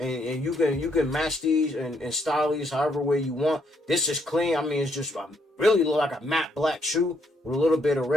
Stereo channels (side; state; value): both; normal; correlation 0.72